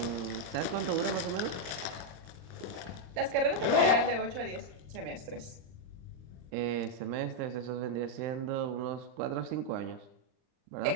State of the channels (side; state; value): left; late; 39 ms